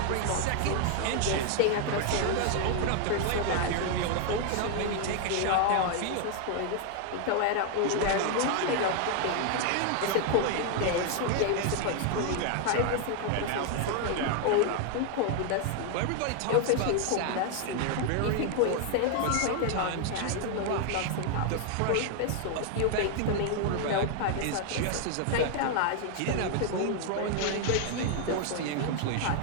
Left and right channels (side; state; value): both; different; correlation 0.00